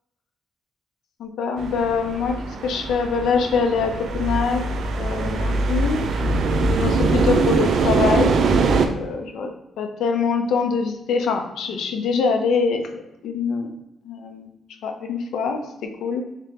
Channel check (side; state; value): both; normal; correlation 0.64